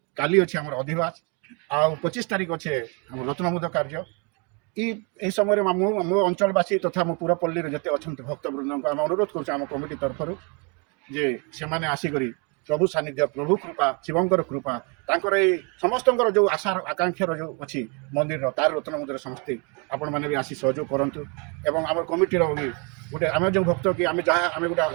କାଲି ଅଛି ଆମର ଅଧିବାସ ଆଉ 25 ତାରିଖ ଅଛି ଆମର ରତ୍ନମୁଦ କାର୍ଯ୍ୟ। এই ସମୟରେ ମୋ ଅଞ୍ଚଳବାସୀ ତଥା ମୋ ପୁରପଲ୍ଲୀରେ ଯେତେ ଅଛନ୍ତି ଭକ୍ତବୃନ୍ଦଙ୍କୁ ଆମେ ଅନୁରୋଧ କରୁଛୁ ଆମ କମିଟି ତରଫରୁ ଯେ ସେମାନେ ଆସିକରି ପ୍ରଭୁ ସାନ୍ନିଧ୍ୟ ପ୍ରଭୁ କୃପା ଶିବଙ୍କର କୃପା ତାଙ୍କର ଏଇ ସମସ୍ତଙ୍କର ଯେଉଁ ଆଶାର ଆକାଂକ୍ଷାର ଯେଉଁ ଅଛି ମନ୍ଦିରର ତାର ରତ୍ନମୁଦ୍ରାରେ ସମସ୍ତେ ଆପଣମାନେ ବି ଆସି ସହଯୋଗ କରନ୍ତୁ। ଏବଂ ଆମର କମିଟିର ବି ଗୋଟେ ଆମେ ଯେଉଁ ଭକ୍ତ କି ଆମେ ଯାହା ଆମେ ଗୋଟେ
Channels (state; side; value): quieter; left; 33.7 dB